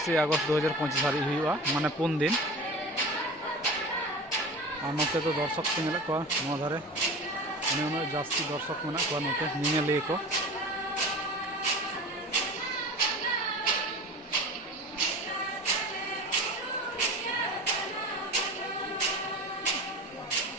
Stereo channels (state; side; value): normal; both; correlation 0.34